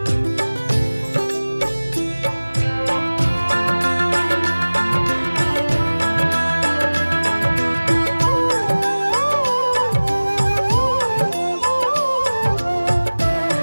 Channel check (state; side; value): inverted; both; correlation -1.00